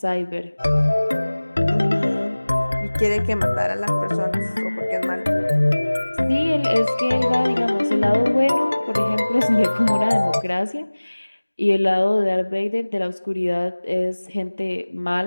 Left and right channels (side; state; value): both; inverted; correlation -1.00